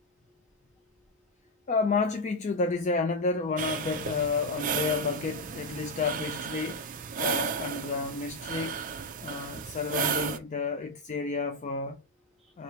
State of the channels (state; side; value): normal; both; correlation 0.05